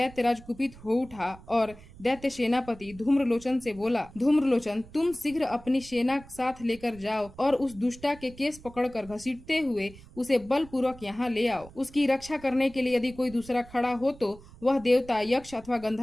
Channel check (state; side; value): noise; right; rumble, 20 dB below the sound